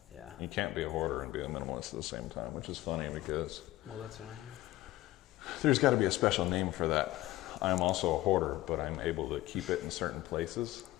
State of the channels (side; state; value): right; quieter; 16.7 dB